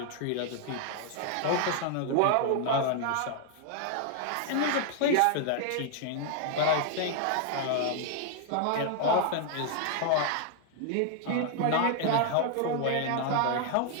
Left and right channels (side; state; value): both; different; correlation 0.00